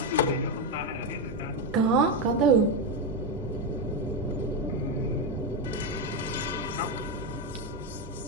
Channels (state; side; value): normal; both; correlation 0.08